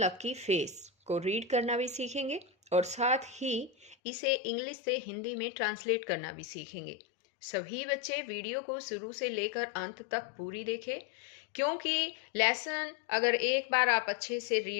फेस को रीड करना भी सीखेंगे और साथ ही इसे इंग्लिश से हिंदी में ट्रांसलेट करना भी सीखेंगे। सभी बच्चे वीडियो को शुरू से लेकर अंत तक पूरी देखें, क्योंकि लेसन अगर एक बार आप अच्छे से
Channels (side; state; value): right; drops out; at 4.0 s